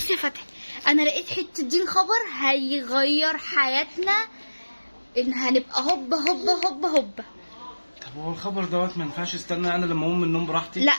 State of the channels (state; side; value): inverted; both; correlation -1.00